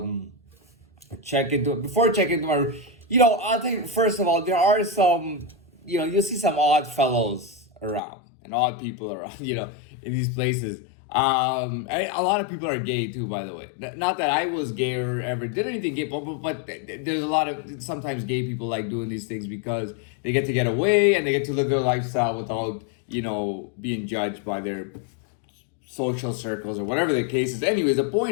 before I check into my, I think first of all, there are some, you'll see some odd fellows around and odd people around, in these places. A lot of people are gay too, by the way. Not that I was gay or ever did anything gay, but there's a lot of, sometimes gay people like doing these things because they get away and they get to live their lifestyle without, being judged by their social circles or whatever the case is. Anyways, the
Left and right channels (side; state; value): right; drops out; at 8.0 s